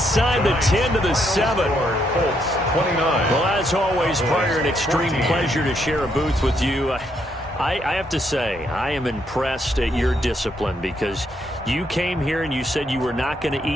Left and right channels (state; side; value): normal; both; correlation 0.75